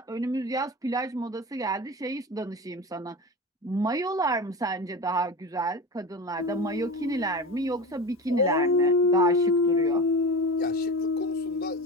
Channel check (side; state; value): both; normal; correlation 0.27